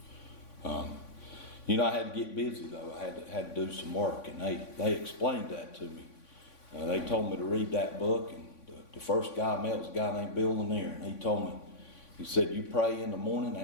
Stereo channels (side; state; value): right; late; 3.5 ms